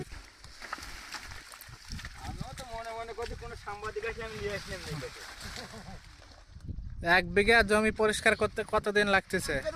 এক বিঘা জমি পরিষ্কার করতে কতদিন লাগতেছে?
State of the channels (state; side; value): identical; both; correlation 1.00